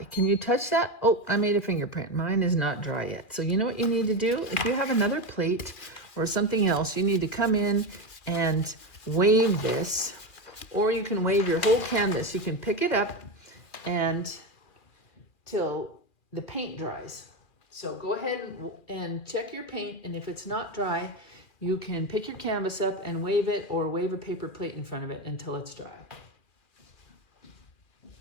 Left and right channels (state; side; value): late; right; 2.4 ms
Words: Can you touch that? Oh, I made a fingerprint. Mine is not dry yet. So you know what you need to do? If you have another plate or something else, you need to come in and wave this, or you can wave your whole canvas. You can pick it up and till the paint dries. So go ahead and check your paint, and if it's not dry, you can pick your canvas up and wave it, or wave a paper plate in front of it until it's dry.